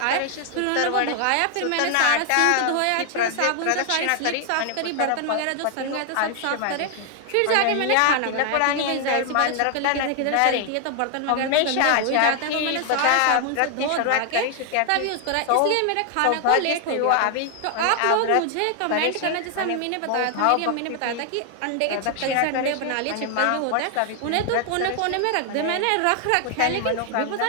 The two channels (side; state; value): both; different; correlation 0.00